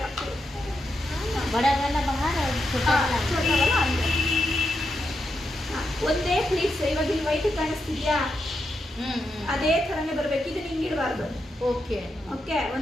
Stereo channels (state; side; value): normal; both; correlation 0.85